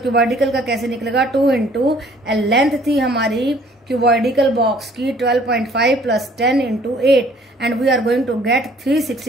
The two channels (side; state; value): both; normal; correlation 0.57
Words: cuboidical का कैसे निकलेगा, 2 इंटू लेंथ थी हमारी क्यूबॉइडिकल बॉक्स की 12.5 plus 10 into 8 and we are going to get